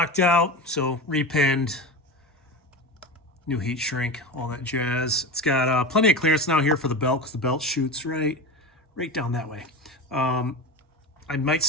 out, so repinned, new heat shrink, all that jazz. It's got plenty of clearance now here for the belt because the belt shoots right down that way. I might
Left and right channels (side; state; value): both; normal; correlation 0.24